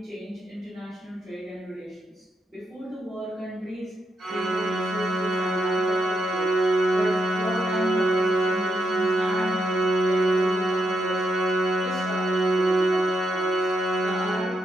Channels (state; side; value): normal; both; correlation 0.81